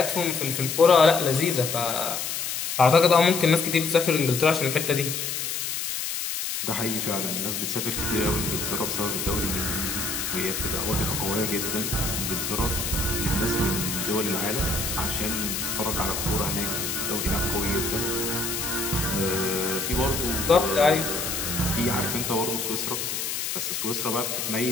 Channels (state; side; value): noise; left; hiss, 3 dB below the sound